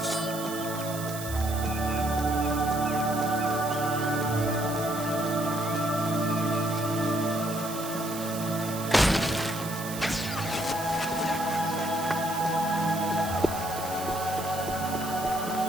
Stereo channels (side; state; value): right; noise; hiss, 10 dB below the sound